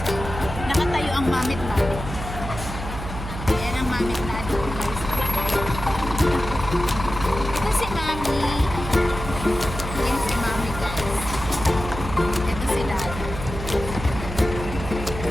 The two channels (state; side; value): noise; right; hum, 8 dB below the sound